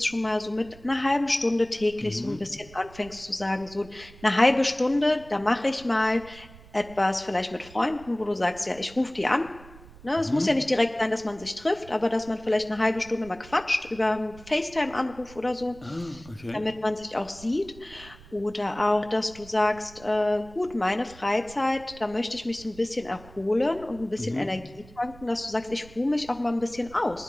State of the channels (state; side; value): noise; right; rumble, 20 dB below the sound